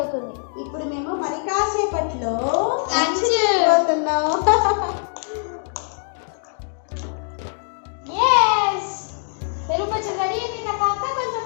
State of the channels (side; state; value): right; silent; digital silence